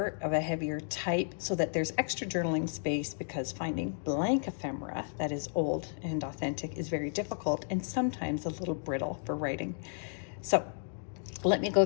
of a heavier type so that there's extra journaling space, because finding blank ephemera that is old and authentic is very difficult and sometimes a little brittle for writing. So let me go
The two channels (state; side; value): silent; right; digital silence